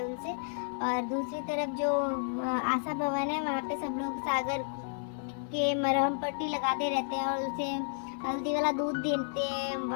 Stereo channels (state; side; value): silent; right; 57 dB below the other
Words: उनसे। और दूसरी तरफ जो आशा भवन है वहाँ पे सब लोग सागर के मरहम पट्टी लगाते रहते हैं और उसे हल्दी वाला दूध देते हैं